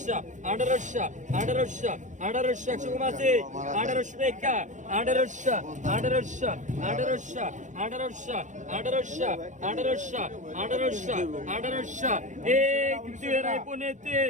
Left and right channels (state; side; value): late; left; 0.36 ms